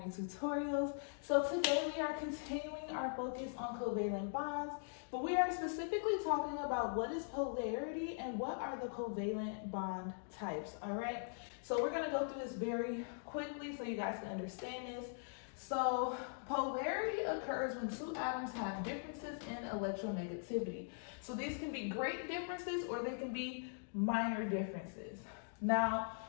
Tutorials. So today we are continuing our focus on covalent bonds, but we are specifically talking about what is polarity and what are the covalent bond types, all right? So we're gonna go through this very quickly so you guys can understand this. So polarity occurs when two atoms have differences in electronegativity. So these can be great differences or they can be minor differences. Now,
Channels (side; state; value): right; silent; digital silence